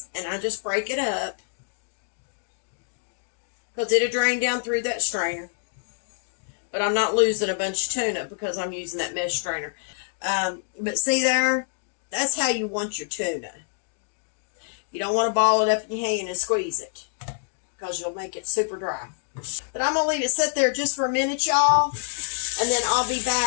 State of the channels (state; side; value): silent; right; digital silence